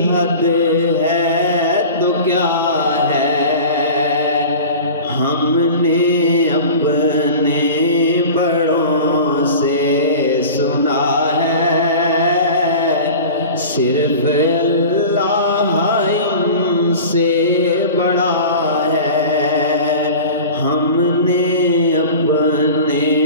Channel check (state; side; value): inverted; both; correlation -0.36